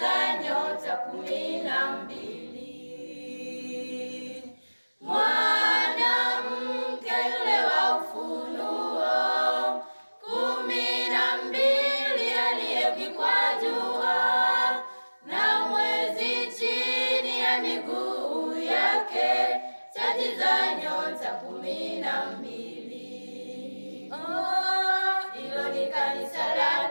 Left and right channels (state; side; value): inverted; both; correlation -1.00